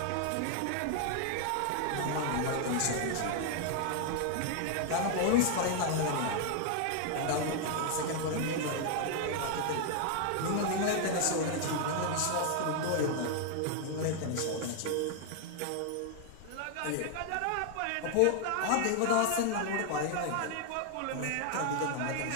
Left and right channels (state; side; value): different; both; correlation 0.00